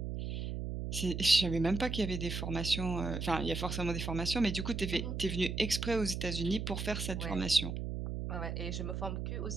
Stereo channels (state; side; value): noise; right; hum, 3 dB below the sound